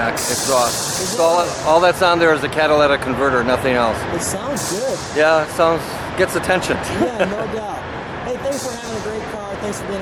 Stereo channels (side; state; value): both; identical; correlation 1.00